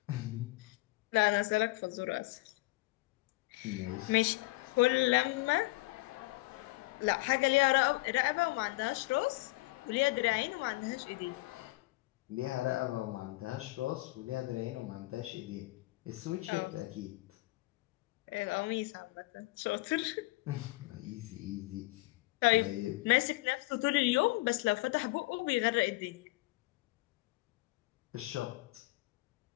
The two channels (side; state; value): right; quieter; 22.2 dB